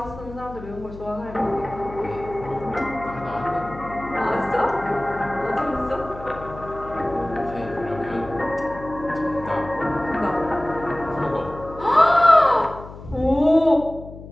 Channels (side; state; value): left; noise; hum, 15 dB below the sound